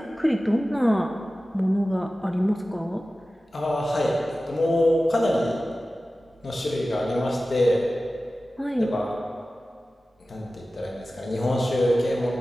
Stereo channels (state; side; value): normal; both; correlation 0.95